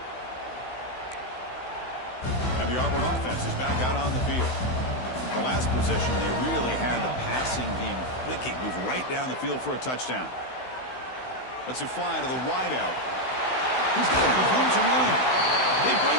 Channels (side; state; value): right; late; 16 ms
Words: And the Auburn offense is back out on the field. The last possession, they really had the passing game clicking. Move right down the field for a touchdown. Let's fly to the wideout. He's got room to run. They